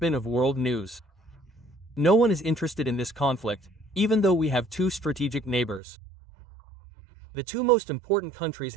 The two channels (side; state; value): left; drops out; at 5.8 s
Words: of world news. No one is interested in this conflict, even though we have two strategic neighbors. The two most important countries